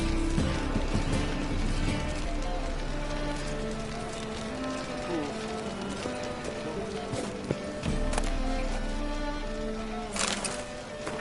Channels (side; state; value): both; identical; correlation 1.00